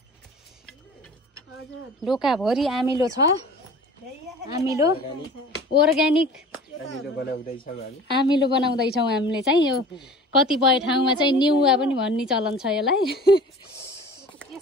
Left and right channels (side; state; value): both; normal; correlation 0.42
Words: डोकाभरि आमिलो छ। आमिलो अर्ग्यानिक आमिलो बनाउँदैछौँ हामीले चाहिँ। यो कतिपय ठाउँमा चाहिँ निउवा पनि भन्ने चलन छ यसलाई।